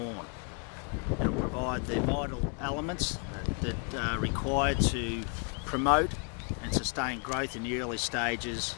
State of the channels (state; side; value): quieter; right; 37.9 dB